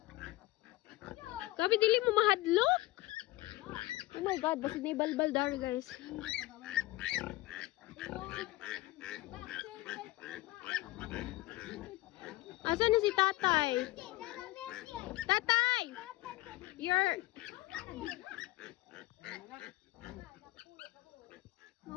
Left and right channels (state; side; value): quieter; right; 18.8 dB